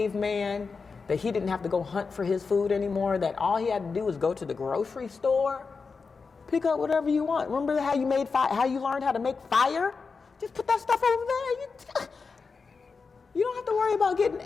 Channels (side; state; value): right; quieter; 4.8 dB